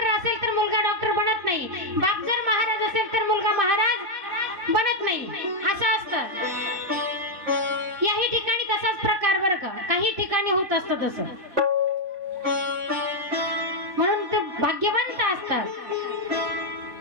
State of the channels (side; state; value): left; late; 4.1 ms